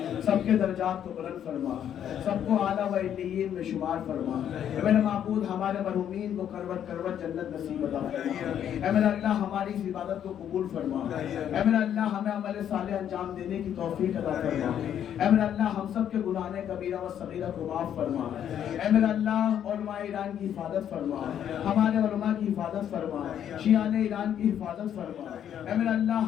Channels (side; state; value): right; quieter; 9.7 dB